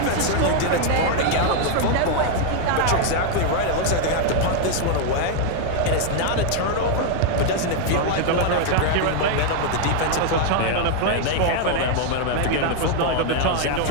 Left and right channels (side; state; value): both; different; correlation 0.00